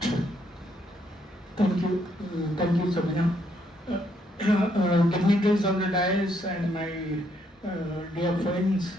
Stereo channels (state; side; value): normal; both; correlation 0.72